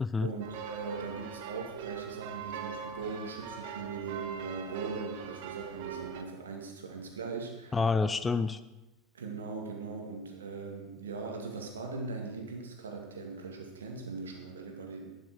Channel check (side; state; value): both; normal; correlation 0.30